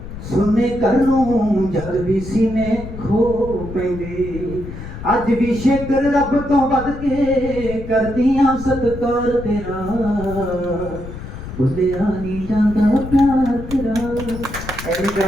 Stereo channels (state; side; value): noise; left; rumble, 11 dB below the sound